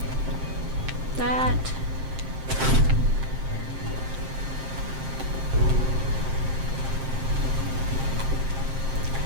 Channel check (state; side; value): late; left; 7.6 ms